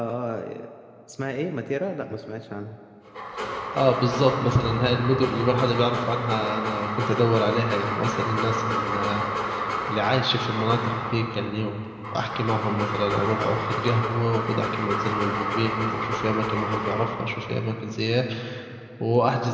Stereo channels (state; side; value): identical; both; correlation 1.00